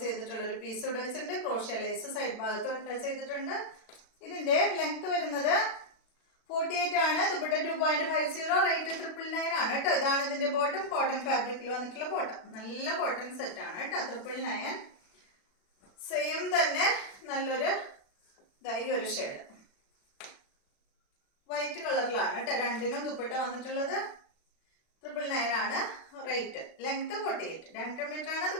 ചെയ്തിട്ടുള്ള ഒരു പീസ് ഇവിടെ വെച്ചിട്ടുണ്ട്. ക്രോഷ്യ ലേസ് സൈഡ് ഭാഗത്ത് അറ്റാച്ച് ചെയ്തിട്ടുണ്ട്. ഇതിന്റെ ലെങ്ത് വരുന്നത് 48 ആണ്. ദുപ്പട്ട 2.50, റേറ്റ് 999 ആണ് കേട്ടോ. ഇതാണ് ഇതിന്റെ ബോട്ടം. കോട്ടൺ ഫാബ്രിക്കിൽ വന്നിട്ടുള്ള ബോട്ടം. നല്ല കോട്ടൺ സെറ്റ് ആണ് കേട്ടോ. 999. സെയിം തന്നെ നല്ലൊരു ഈ ഒരു ഷെയ്ഡ് വൈറ്റ് കളറിലാണ് കേട്ടോ. രണ്ടിനും ദുപ്പട്ട വന്നിട്ടുള്ളത്. 999 ആണ് റേറ്റ്. ലെങ്ത് 48, 2 മീറ്റർ ആണ്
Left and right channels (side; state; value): right; late; 36 ms